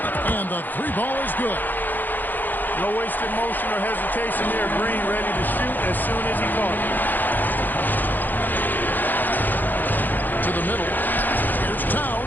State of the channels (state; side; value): late; right; 0.088 ms